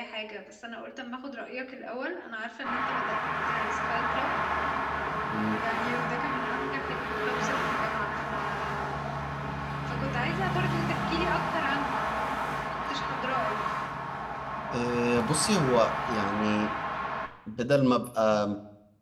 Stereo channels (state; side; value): identical; both; correlation 1.00